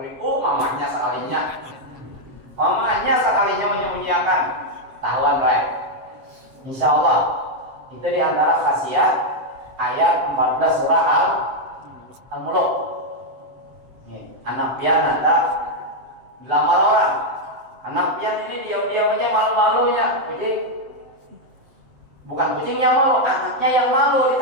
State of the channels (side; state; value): left; late; 7.6 ms